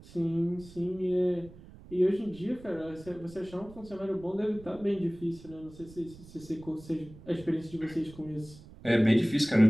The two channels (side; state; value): right; noise; rumble, 19 dB below the sound